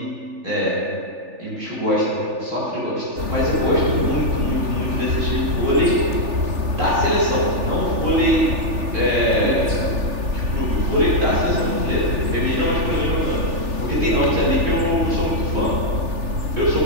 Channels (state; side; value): late; left; 3.4 ms